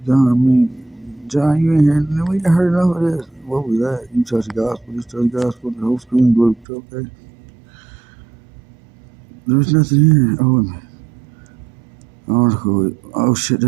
I mean, John, you ain't heard, we ain't heard enough of this. What was that? You touch the gospel, just touch the gospel, the whole screen blew, okay? There's nothing here. Oh, article. Oh shit,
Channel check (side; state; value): left; drops out; at 6.7 s